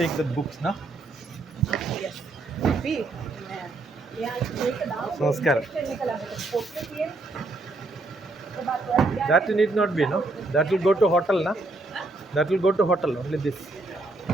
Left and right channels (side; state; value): left; quieter; 3.0 dB